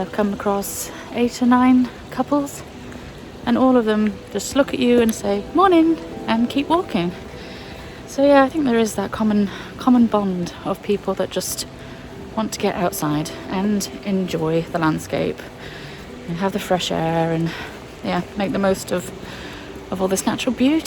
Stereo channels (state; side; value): identical; both; correlation 1.00